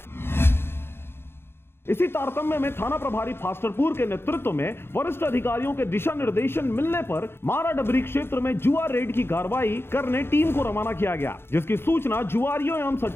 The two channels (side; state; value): right; late; 0.11 ms